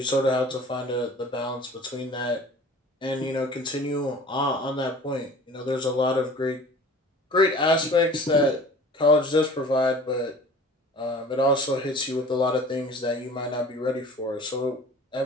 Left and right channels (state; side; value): normal; both; correlation 0.45